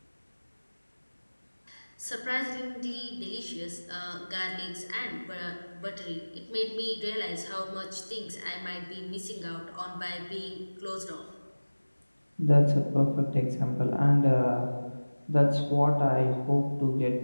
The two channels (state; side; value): inverted; both; correlation -1.00